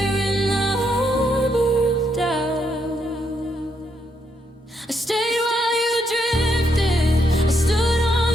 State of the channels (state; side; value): normal; both; correlation 0.77